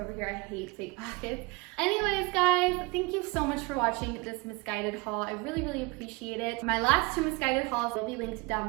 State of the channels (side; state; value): left; quieter; 26.0 dB